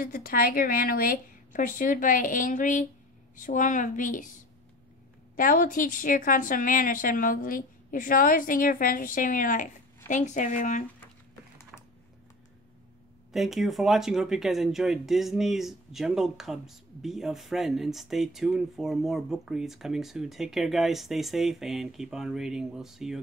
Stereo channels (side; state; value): both; normal; correlation 0.38